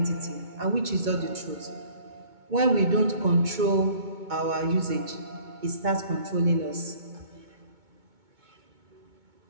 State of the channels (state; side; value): late; left; 2.2 ms